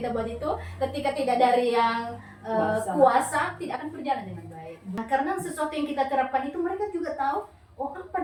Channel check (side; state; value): both; identical; correlation 1.00